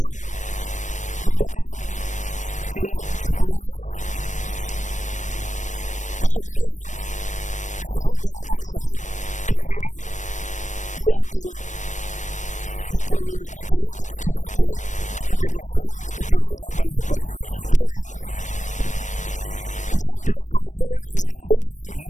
nous notons que le Premier ministre, à son honneur, je peux vraiment bien comprendre, seulement, l'India, il open, il pour écouter, il pour discuter, il pour négocier, il pour causer avec les autres partis politiques. Tant mieux. Mais dans ce forme actuel,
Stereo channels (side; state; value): right; late; 0.35 ms